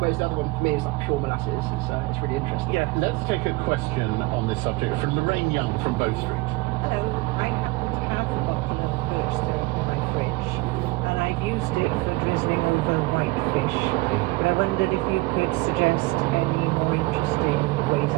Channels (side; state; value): left; quieter; 22.3 dB